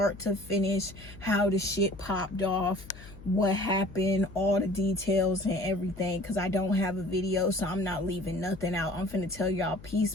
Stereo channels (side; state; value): left; noise; hum, 18 dB below the sound